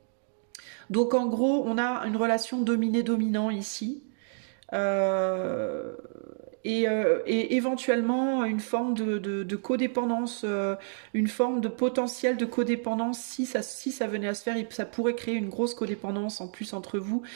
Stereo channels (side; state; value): left; silent; digital silence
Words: ? Donc en gros, on a une relation dominé-dominant ici. Et éventuellement une forme de codépendance, une forme de potentiel de codépendance. Si ça venait à se faire, ça pourrait créer une grosse codépendance en plus entre vous.